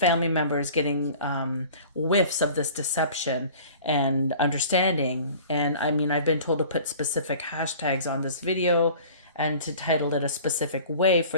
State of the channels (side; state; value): both; inverted; correlation -0.45